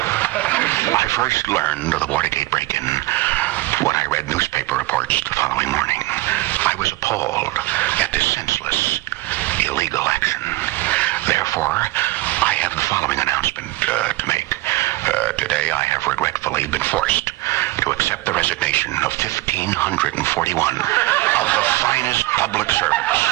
I first learned of the Watergate break-in when I read newspaper reports the following morning. I was appalled at this senseless, illegal action. Therefore, I have the following announcement to make. Today, I have regretfully been forced to accept the resignation of 1,541 of the finest public servants.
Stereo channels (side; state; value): left; quieter; 19.0 dB